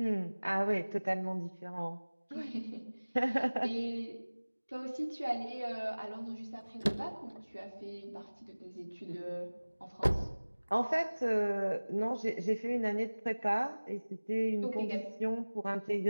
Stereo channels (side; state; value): both; inverted; correlation -1.00